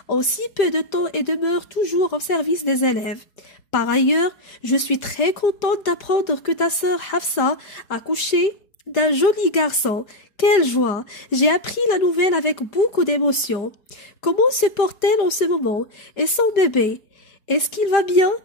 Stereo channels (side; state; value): right; late; 4.7 ms